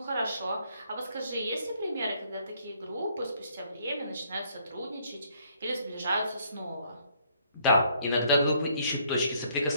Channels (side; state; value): both; inverted; correlation -0.66